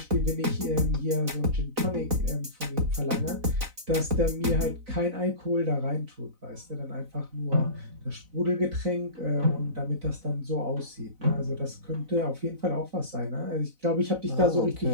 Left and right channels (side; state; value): left; late; 4.0 ms